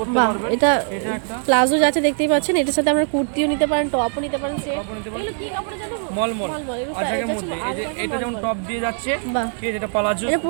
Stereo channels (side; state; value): left; silent; 58 dB below the other